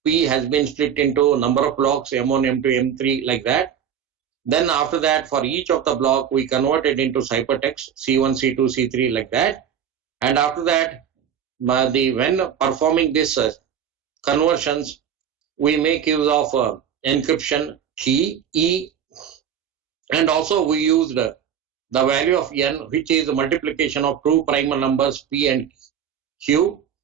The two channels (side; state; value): left; quieter; 8.6 dB